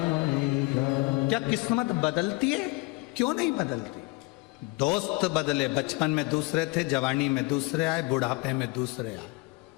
क्या किस्मत बदलती है? क्यों नहीं बदलती? दोस्त बदले, बचपन में दूसरे थे, जवानी में दूसरे आए, बुढ़ापे में दूसरे आए।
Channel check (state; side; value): quieter; right; 24.9 dB